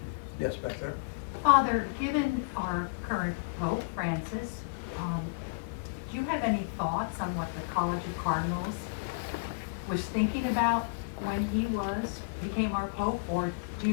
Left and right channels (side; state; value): right; quieter; 34.9 dB